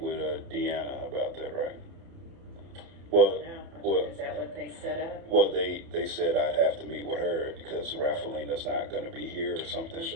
Deanna about that, right? Well, Is that what they set up? Well, they said I'd have to meet with her because Raphaelina's not going to be here or something.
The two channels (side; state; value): left; late; 30 ms